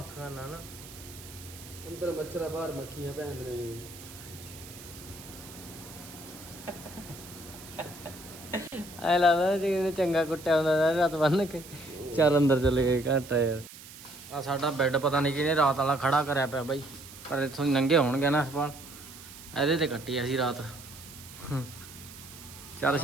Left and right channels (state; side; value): noise; right; hiss, 16 dB below the sound